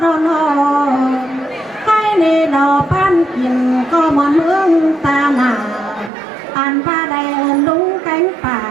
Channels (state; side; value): drops out; left; at 6.1 s